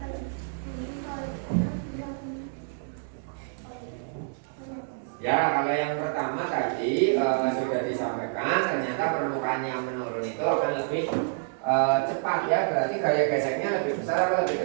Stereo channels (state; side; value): silent; left; 59 dB below the other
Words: Ya, kalau yang pertama tadi sudah disampaikan, ternyata permukaan yang menurun itu akan lebih cepat ya, berarti gaya geseknya lebih besar atau lebih